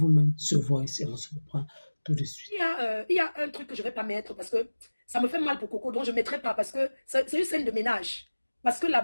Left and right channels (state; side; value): inverted; both; correlation -1.00